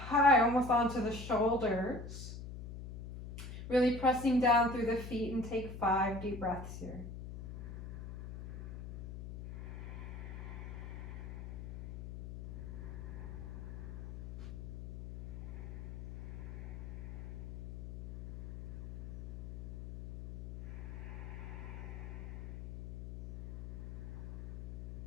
almost onto the shoulders. Really pressing down through the feet, and take 5 deep breaths here.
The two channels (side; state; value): left; noise; hum, 10 dB below the sound